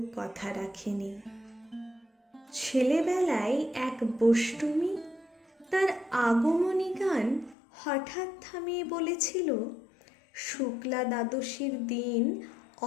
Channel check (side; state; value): right; drops out; at 7.6 s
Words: কথা রাখেনি। ছেলেবেলায় এক বষ্টমী তার আগমনী গান হঠাৎ থামিয়ে বলেছিল, শুক্লা দ্বাদশীর দিন